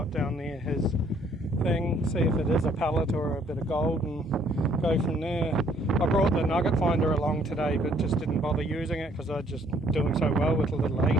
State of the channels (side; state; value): both; normal; correlation 0.64